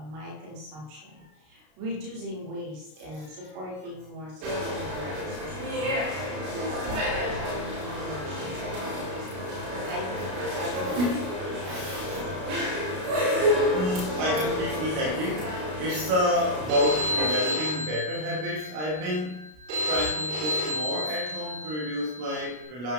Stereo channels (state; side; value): late; left; 33 ms